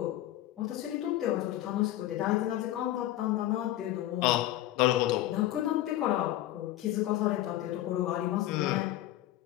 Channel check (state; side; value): quieter; right; 14.3 dB